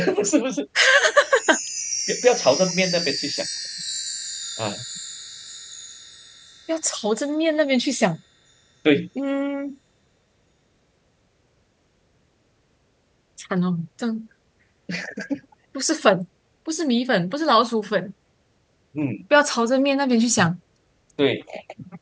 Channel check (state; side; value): identical; both; correlation 1.00